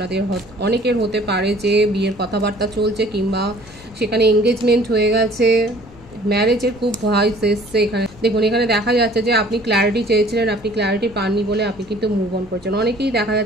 অনেকের হতে পারে যে বিয়ের কথাবার্তা চলছে, কিংবা সেখানে এঙ্গেজমেন্ট হয়ে গেছে, ম্যারেজের খুব ভয়েস এসছে। এখানে দেখুন, এখানে দেখা যাচ্ছে যে আপনি ক্ল্যারিটি চেয়েছিলেন, আপনি ক্ল্যারিটি পাননি বলে আপনি কিন্তু মুভ অন করেছেন। অনেকেই দেখা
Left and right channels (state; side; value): noise; left; rumble, 23 dB below the sound